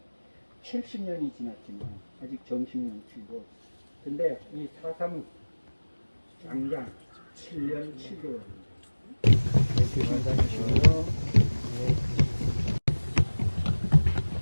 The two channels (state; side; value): inverted; both; correlation -1.00